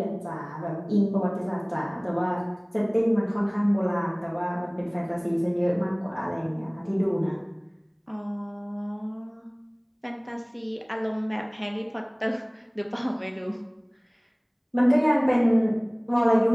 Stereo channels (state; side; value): identical; both; correlation 1.00